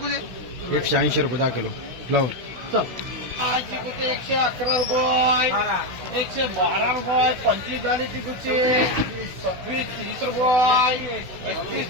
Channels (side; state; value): left; late; 16 ms